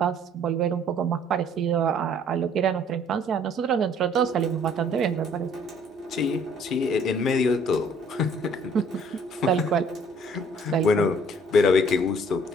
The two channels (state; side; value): normal; both; correlation 0.58